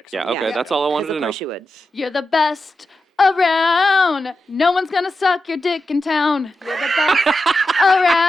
Yeah. so- Okay. That's all I wanted to Of know. course you would. You're the best around. No one's gonna suck your dick in town. You're the best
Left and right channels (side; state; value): both; normal; correlation 0.89